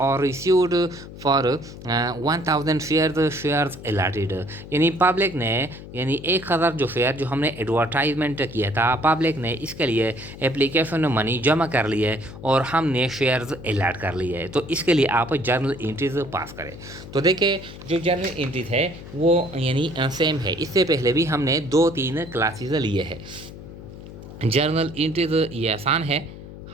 रिसीव्ड फॉर 1000 शेयर्स अलॉटेड, यानी पब्लिक ने यानी 1000 जो शेयर जो हमने एडवर्टाइजमेंट किया था पब्लिक ने इसके लिए एप्लीकेशन मनी जमा कर ली है और हमने शेयर्स अलॉट कर लिए है, तो इसके लिए आप जर्नल एंट्रीज पास करें। तो देखिए जो जर्नल एंट्रीज है वो यानी सेम है, इससे पहले भी हमने 2-3 क्लासेस लिए हैं। जर्नल एंट्रीज ये आसान है,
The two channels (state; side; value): noise; left; hum, 14 dB below the sound